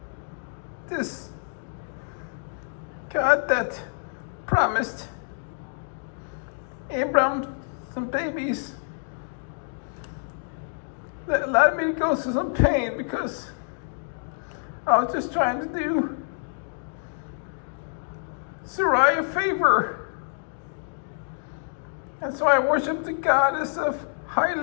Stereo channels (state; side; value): silent; right; digital silence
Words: this God that promised Abram some babies that allowed me to go through some pain because I was just trying to do Sarai a favor. And so I worshiped the goddess of